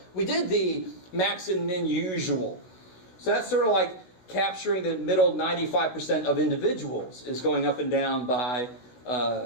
We did the max and min usual. So that's sort of like capturing the middle 95% of individuals is going up and down by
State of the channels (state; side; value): late; right; 16 ms